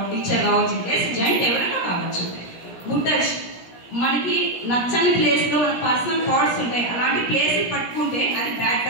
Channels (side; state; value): right; late; 17 ms